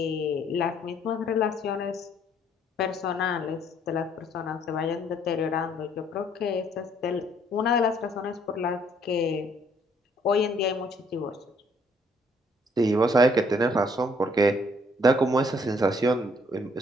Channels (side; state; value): both; normal; correlation 0.64